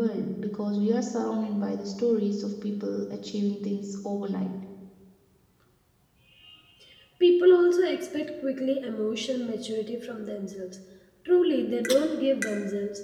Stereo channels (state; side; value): identical; both; correlation 1.00